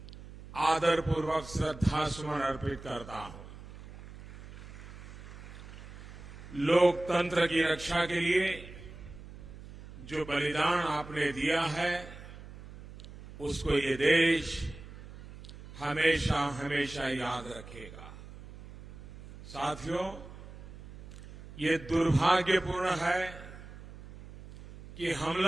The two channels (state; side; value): noise; right; hum, 15 dB below the sound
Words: आदरपूर्वक श्रद्धासुमन अर्पित करता हूं। लोकतंत्र की रक्षा के लिए जो बलिदान आपने दिया है उसको ये देश हमेशा हमेशा याद रखेगा। साथियों, ये दुर्भाग्यपूर्ण है कि